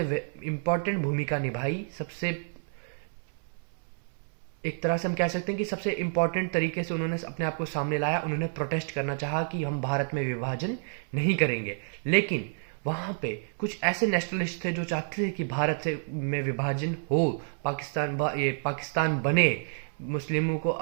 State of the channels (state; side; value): silent; left; 58 dB below the other